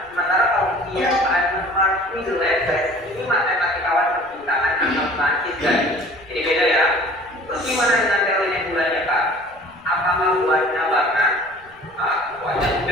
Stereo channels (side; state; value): left; noise; rumble, 29 dB below the sound